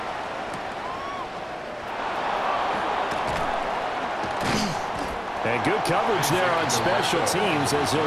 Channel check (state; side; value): identical; both; correlation 1.00